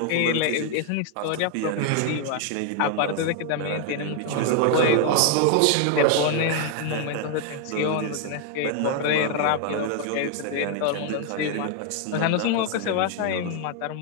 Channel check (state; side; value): different; both; correlation 0.00